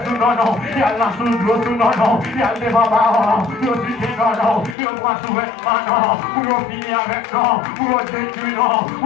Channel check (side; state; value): right; drops out; at 4.8 s